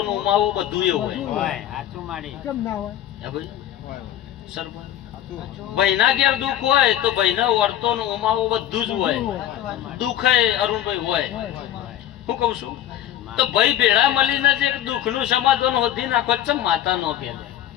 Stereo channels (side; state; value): right; quieter; 11.8 dB